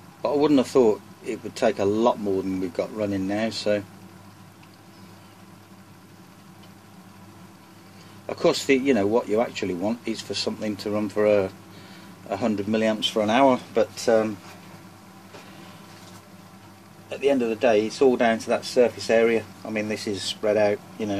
but I wouldn't have thought it would take a lot more than we've got running now. So of course, you know what you actually want is for something to run for 100 milliamps for an hour, but at the end of the day, it's all down to that surface area. I mean, this is spread out, you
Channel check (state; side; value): identical; both; correlation 1.00